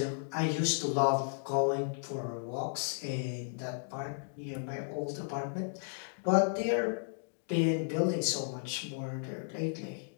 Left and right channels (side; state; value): right; silent; digital silence